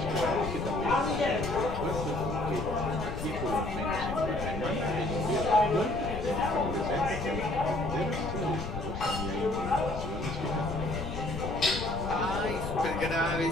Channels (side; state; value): left; noise; rumble, 7 dB below the sound